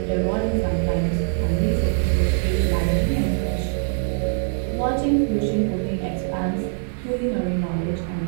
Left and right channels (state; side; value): silent; left; 64 dB below the other